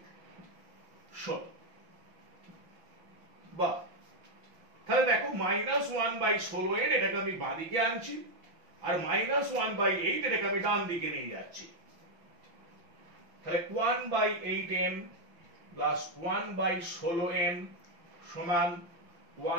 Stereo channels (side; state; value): left; late; 5.9 ms